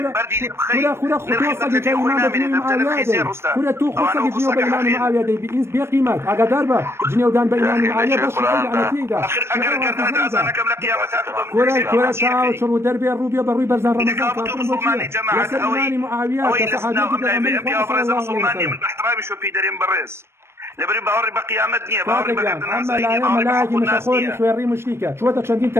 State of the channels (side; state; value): left; late; 0.12 ms